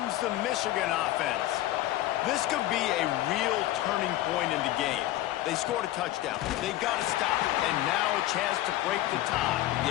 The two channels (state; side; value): quieter; right; 15.1 dB